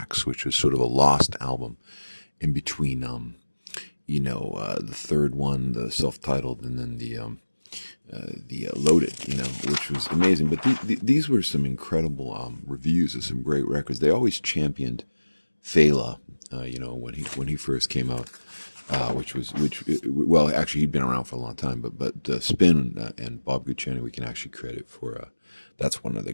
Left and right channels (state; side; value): inverted; both; correlation -1.00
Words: which was sort of a lost album in between. The third one, the self-titled, and then the Loaded, which was amazing. But these were some incredible reviews of some great records. They always championed Fela, when he first came out, actually he'd been around for a long time, but Spin and Bob Guccione we can actually credit for. That's one of the